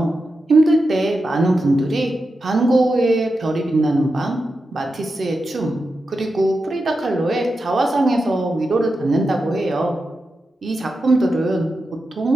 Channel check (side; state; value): both; normal; correlation 0.89